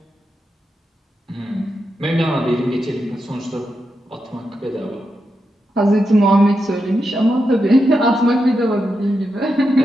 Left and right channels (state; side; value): normal; both; correlation 0.86